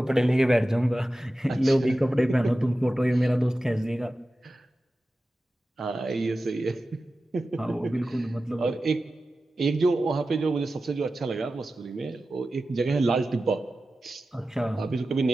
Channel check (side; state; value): both; normal; correlation 0.94